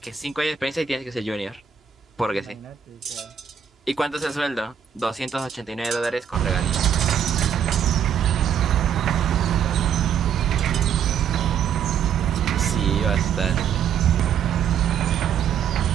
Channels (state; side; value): quieter; left; 8.2 dB